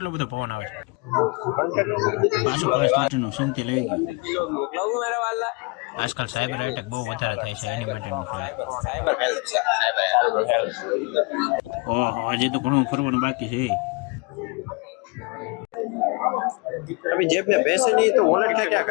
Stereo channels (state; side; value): quieter; right; 29.6 dB